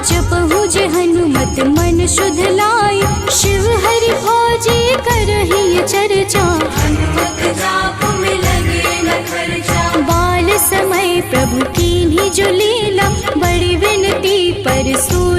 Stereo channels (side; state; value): both; identical; correlation 1.00